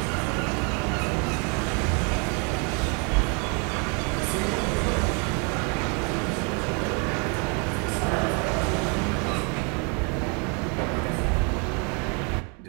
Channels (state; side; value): quieter; left; 34.8 dB